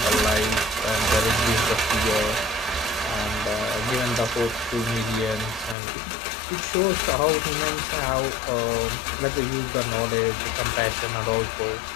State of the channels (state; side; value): drops out; right; at 5.8 s